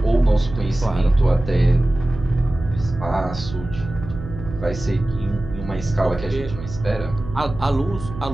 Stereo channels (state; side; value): noise; right; hum, 11 dB below the sound